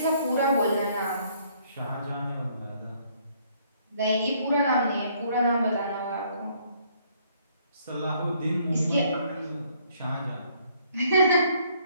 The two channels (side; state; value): both; inverted; correlation -0.65